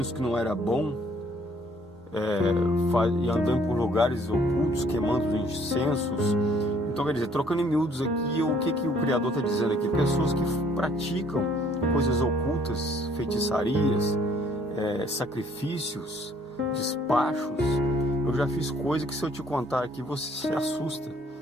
que não era bom, e andando por lugares ocultos, queimando incensos. Então, quer dizer, trocando em miúdos aqui, o que o Criador está dizendo aqui? Pessoas que praticam coisas ocultas, feitiçarias, sacrifícios, despachos. Eu já fiz coisa que, se eu te contar aqui, você se assusta.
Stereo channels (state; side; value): normal; both; correlation 0.61